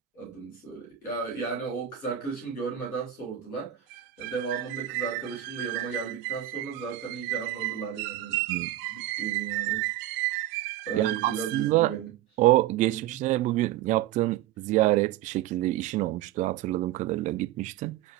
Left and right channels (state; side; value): quieter; left; 12.7 dB